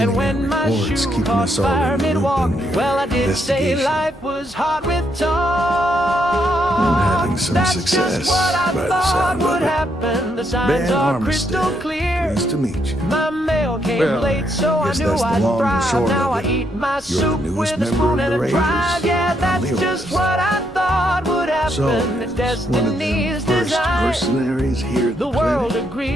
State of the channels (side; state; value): both; normal; correlation 0.76